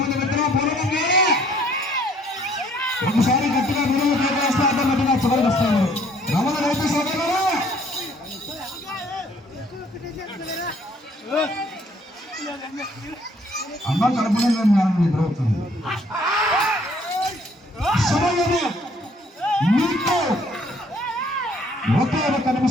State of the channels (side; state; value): both; normal; correlation 0.62